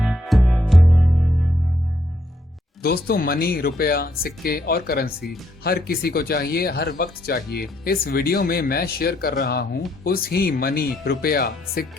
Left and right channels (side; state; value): both; normal; correlation 0.73